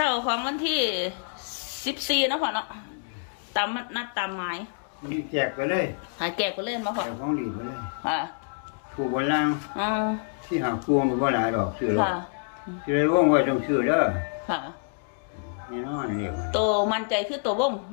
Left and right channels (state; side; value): silent; right; digital silence